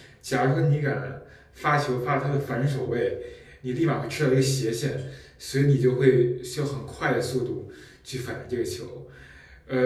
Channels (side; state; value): both; identical; correlation 1.00